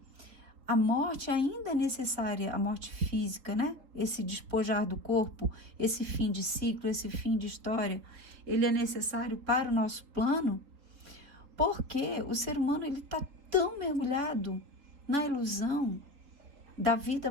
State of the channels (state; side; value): late; left; 3.8 ms